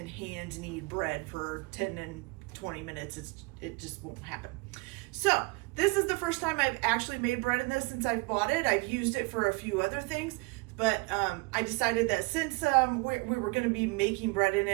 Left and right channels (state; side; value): quieter; left; 27.3 dB